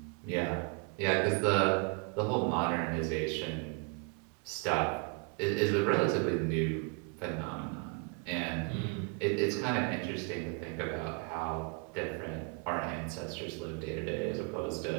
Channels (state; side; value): quieter; left; 33.0 dB